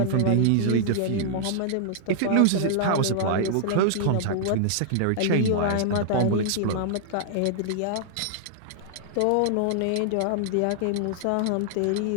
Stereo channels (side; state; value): both; different; correlation -0.01